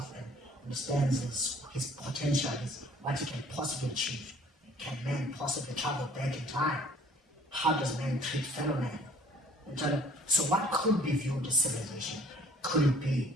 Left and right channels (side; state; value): both; normal; correlation 0.53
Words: and understands his potential, what he can possibly achieve. Can man possibly travel back in time? How does man treat fellow man? So what could be viewed as civilization? Could it be